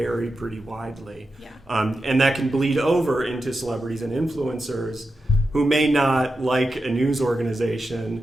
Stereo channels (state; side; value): normal; both; correlation 0.90